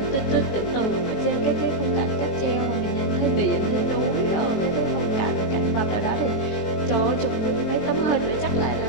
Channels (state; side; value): late; right; 18 ms